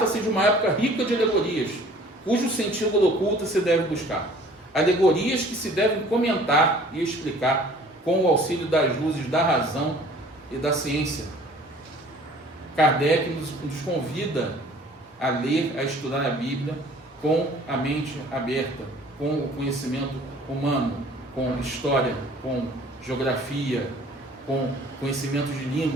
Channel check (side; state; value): both; normal; correlation 0.52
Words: de uma época rica de alegorias, cujo sentido oculto se deve buscar. Alegorias que se devem comentar e explicar com o auxílio das luzes da razão e da ciência. Kardec nos convida a ler, a estudar a Bíblia com a mente aberta, com o conhecimento humano, com história, com geografia, com conhecimento de